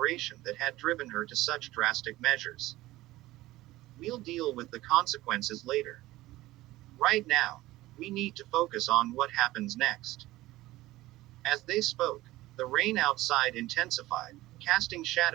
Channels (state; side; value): quieter; left; 17.3 dB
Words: that had driven her to such drastic measures. "We'll deal with the consequences later. Right now, we need to focus on what happens next." As they spoke, the rain outside intensified, casting